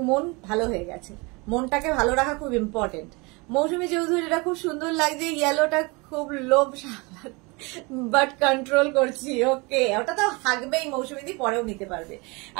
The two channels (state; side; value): quieter; left; 27.4 dB